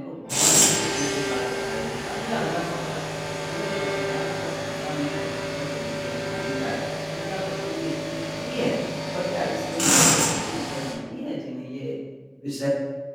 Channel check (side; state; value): both; identical; correlation 1.00